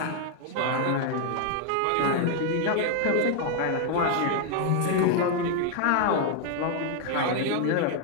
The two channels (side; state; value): both; different; correlation 0.00